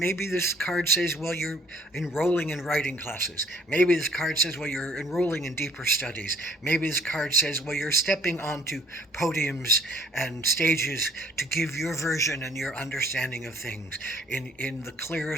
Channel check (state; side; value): normal; both; correlation 0.58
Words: this card says, well, you're enrolling in writing classes. Maybe this card says, well, you're enrolling in deeper studies. Maybe this card says, well, you're stepping onto podiums and stages to give your version and your understanding of things in the